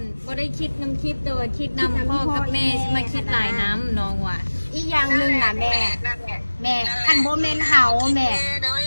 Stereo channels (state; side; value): inverted; both; correlation -1.00